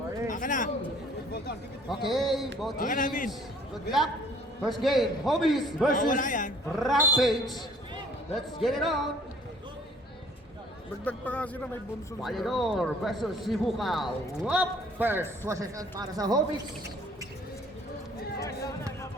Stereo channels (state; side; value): normal; both; correlation 0.56